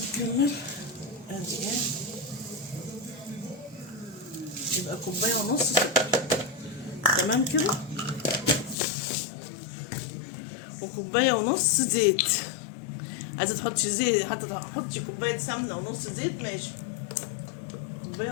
نكمل. ادي ايه، يبقى 1.5 كوباية سكر. تمام كده. و1.5 كوباية زيت. عايزة تحطي زيت، حتى تحطي كوباية سمنة ونص زيت ماشي. 1.5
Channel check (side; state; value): right; drops out; at 8.8 s